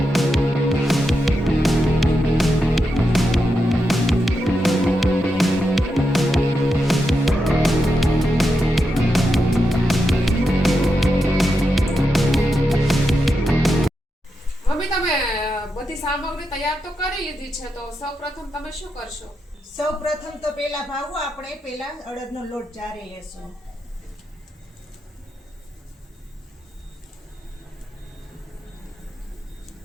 બધી સામગ્રી તૈયાર તો કરી લીધી છે, તો સૌપ્રથમ તમે શું કરશો? સૌપ્રથમ તો પહેલા ભાવ આપણે પહેલા અડદનો લોટ ચારી લેશું.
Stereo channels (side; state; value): both; normal; correlation 0.86